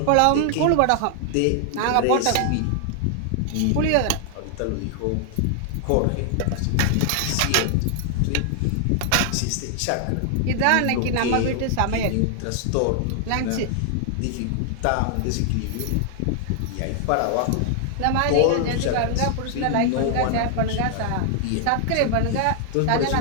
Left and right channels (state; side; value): different; both; correlation 0.00